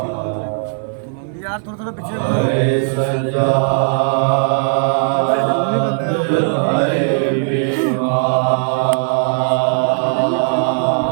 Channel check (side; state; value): left; silent; digital silence